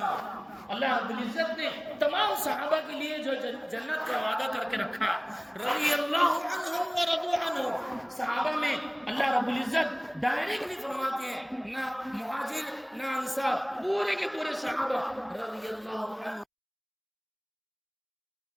اللہ رب العزت نے تمام صحابہ کے لیے جو جنت کا وعدہ کر کے رکھا، رضی اللہ عنہم ورضوا عنہ. صحابہ میں اللہ رب العزت ڈائریکٹ نہیں فرماتے ہیں، نہ مہاجر نہ انصار، پورے کے پورے صحابہ رضی اللہ عنہ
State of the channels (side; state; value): both; identical; correlation 1.00